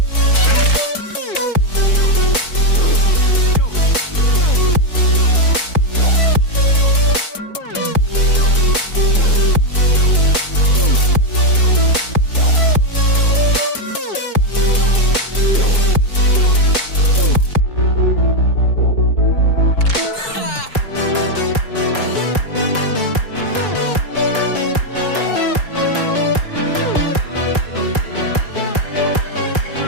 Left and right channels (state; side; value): late; right; 4.6 ms